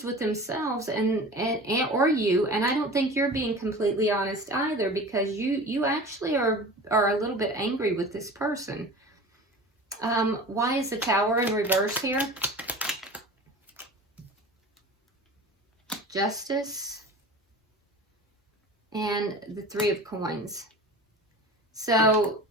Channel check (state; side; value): normal; both; correlation 0.37